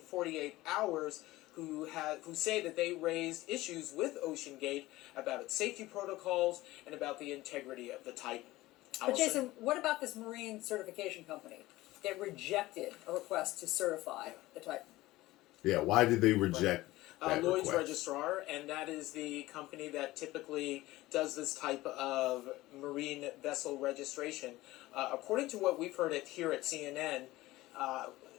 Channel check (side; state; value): right; quieter; 18.0 dB